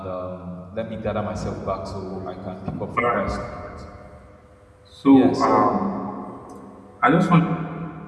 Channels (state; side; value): identical; both; correlation 1.00